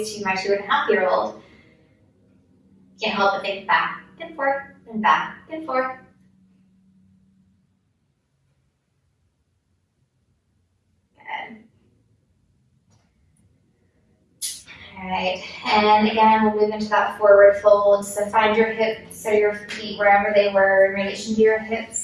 to my 2.5-year-old, can't help but think back and forth and back and forth. Alright, and again, we'll move into that forward fold. So find your hips or your feet wherever they were in relation to your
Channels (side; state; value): both; identical; correlation 1.00